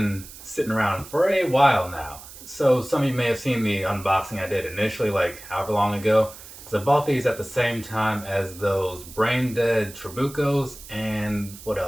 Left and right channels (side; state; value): right; noise; hiss, 16 dB below the sound